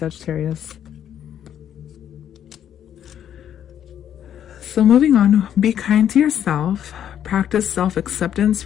So moving on, be kind to yourself. Practice self-acceptance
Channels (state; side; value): quieter; right; 9.9 dB